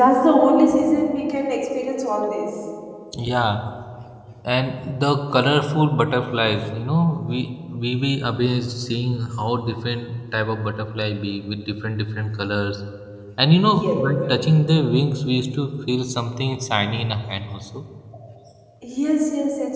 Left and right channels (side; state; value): both; identical; correlation 1.00